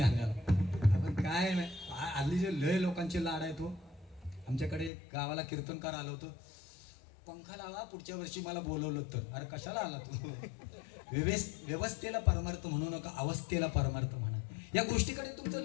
आपण काय नाही हल्ली जे लय लोकांचे लाड आहे तो. आमच्याकडे गावाला कीर्तनकार आलो होतो. पंखा लावा पुढच्या वर्षी मला बोलवलं तर. अरे कशाला आला तू. व्यवस्थेला परमार्थ म्हणू नका अवस्थेला परमार्थ म्हणा. या गोष्टीकडे तुमचं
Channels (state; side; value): drops out; right; at 4.9 s